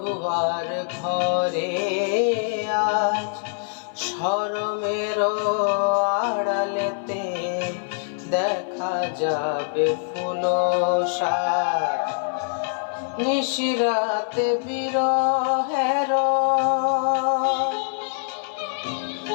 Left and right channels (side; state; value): right; silent; 57 dB below the other